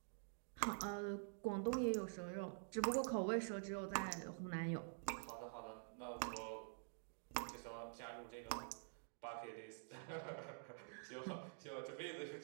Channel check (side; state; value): left; silent; digital silence